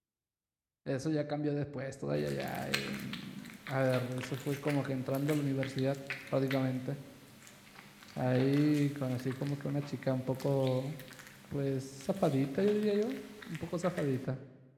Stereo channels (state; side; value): identical; both; correlation 1.00